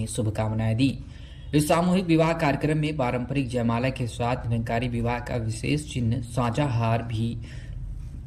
शुभकामनाएं दी। इस सामूहिक विवाह कार्यक्रम में पारंपरिक जयमाला के साथ निरंकारी विवाह का विशेष चिन्ह साझा हार भी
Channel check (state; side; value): identical; both; correlation 1.00